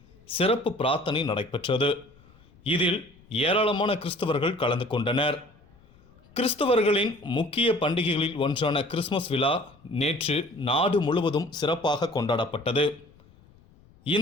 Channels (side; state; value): left; noise; rumble, 28 dB below the sound